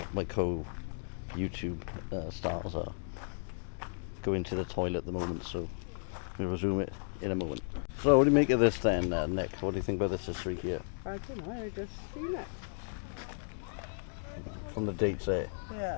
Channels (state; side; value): silent; right; digital silence